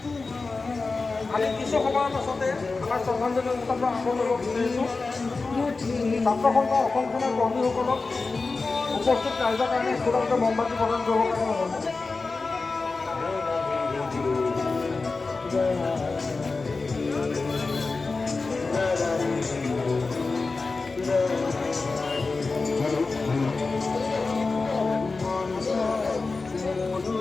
আমি কিছু সময়ৰ পাছতে আমাৰ শ্ৰদ্ধাঞ্জলি অনুষ্ঠানটো আৰম্ভ কৰিব বিচাৰিছোঁ। ছাত্ৰ সন্থা অসম সেনাৰ কৰ্মীসকলক উপস্থিত ৰাইজৰ কাৰণে একোটাকে মমবাতি প্ৰদান কৰিবৰ কাৰণে অনুৰোধ জনাইছোঁ।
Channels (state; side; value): quieter; right; 3.9 dB